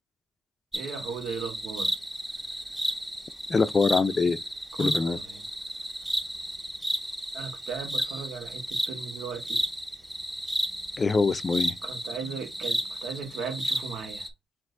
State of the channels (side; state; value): both; normal; correlation 0.89